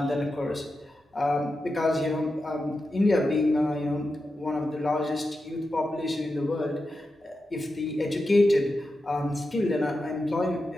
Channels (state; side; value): normal; both; correlation 0.90